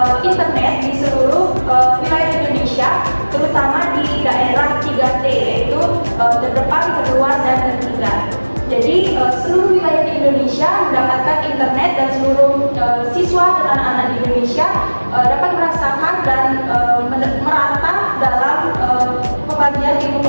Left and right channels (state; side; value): inverted; both; correlation -1.00